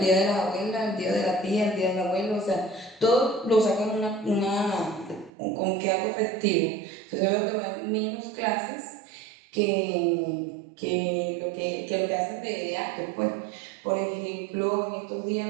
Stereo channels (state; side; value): drops out; left; at 5.3 s